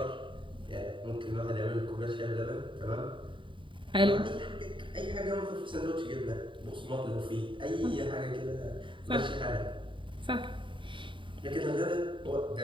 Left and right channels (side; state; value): left; late; 0.24 ms